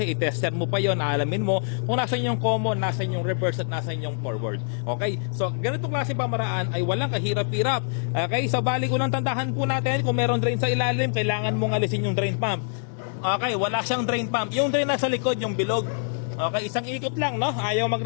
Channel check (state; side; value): silent; right; digital silence